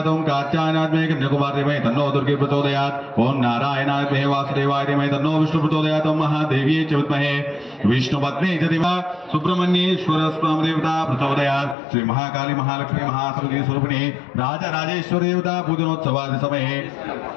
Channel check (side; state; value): right; drops out; at 11.8 s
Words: ओं कात्यायनात् मे कन्याकुमारी धीमहि तन्नो दुर्गे प्रचोदयात्. ओं नारायणाय मे वासुदेवाय धीमहि तन्नो विष्णु प्रचोदयात्. ओं महादेव्यै च विद्महे विष्णुपत्न्यै च धीमहि सुब्रह्मण्येश्वर देवता प्रचोदयात्. श्री महाकाली महालक्ष्मी महासरस्वती स्वरूपिणी राजराजेश्वरी देवता पूजनोत्सवादि समये